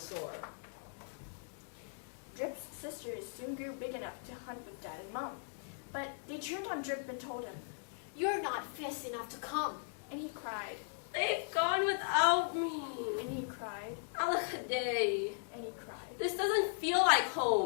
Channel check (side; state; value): right; silent; digital silence